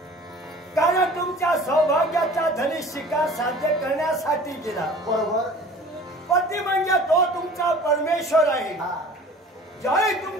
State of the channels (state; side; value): normal; both; correlation 0.45